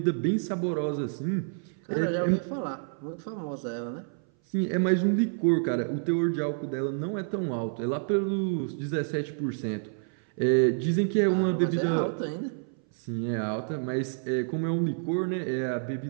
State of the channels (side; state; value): left; silent; 58 dB below the other